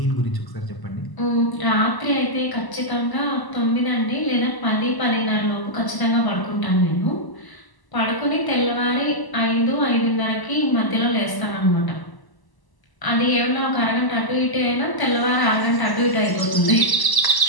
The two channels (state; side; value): late; right; 1.0 ms